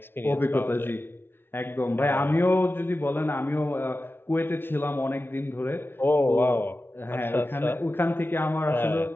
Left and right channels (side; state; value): right; late; 0.11 ms